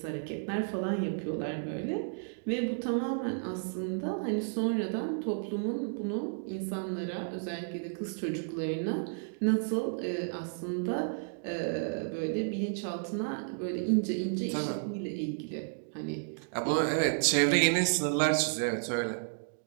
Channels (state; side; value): silent; left; digital silence